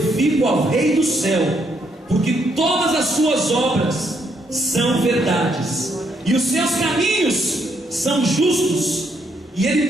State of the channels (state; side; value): normal; both; correlation 0.74